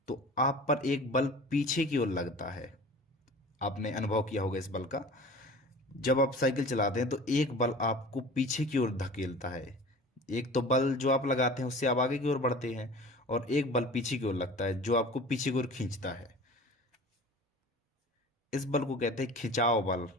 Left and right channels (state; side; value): normal; both; correlation 0.40